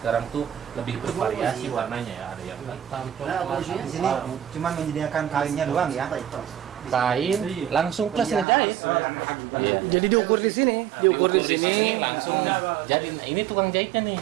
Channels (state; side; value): drops out; left; at 8.5 s